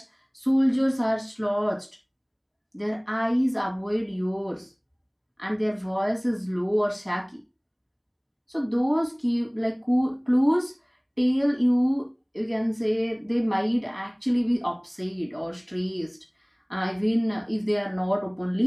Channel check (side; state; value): both; identical; correlation 1.00